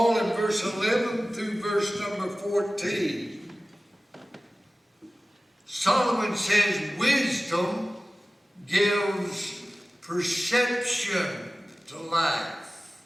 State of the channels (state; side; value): normal; both; correlation 0.97